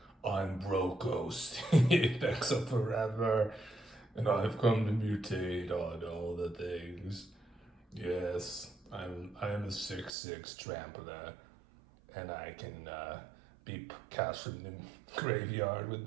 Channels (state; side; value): drops out; left; at 10.1 s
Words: I'm Brokkos, thanks up forever, and I've come to mutate on all the things. Yes, I am a 6/6 trampler, and I can be cast from the graveyard